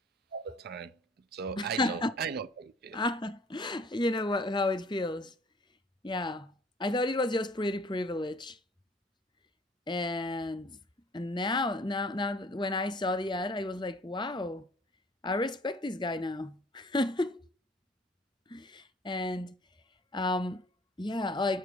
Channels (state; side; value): normal; both; correlation 0.54